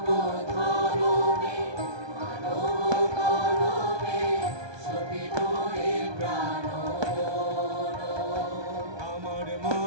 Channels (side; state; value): left; late; 1.2 ms